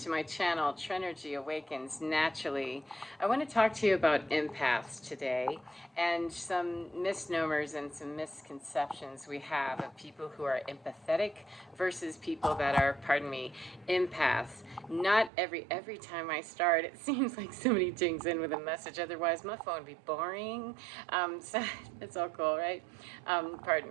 my channel, Trenergy Awakens Naturally. I want to talk to you about empaths today and some misnomers and some misconceptions we have of people who are empathetic versus people that are, pardon me, empaths. Not every time I start, it seems like somebody dings in with a message. Otherwise, my phone would be boring. So it's all cool, right? Pardon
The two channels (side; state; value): left; drops out; at 15.3 s